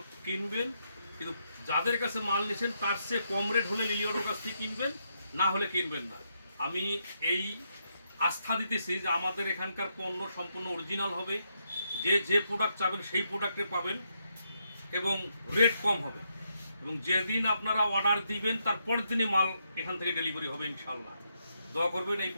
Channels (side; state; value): both; inverted; correlation -0.80